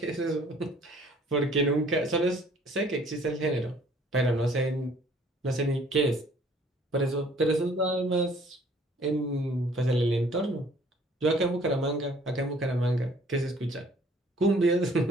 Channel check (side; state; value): both; normal; correlation 0.57